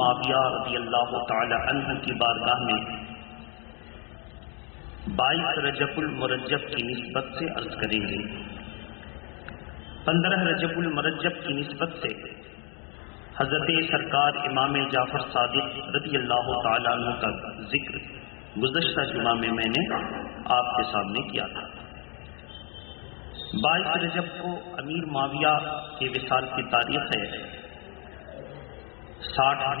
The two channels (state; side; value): quieter; right; 35.4 dB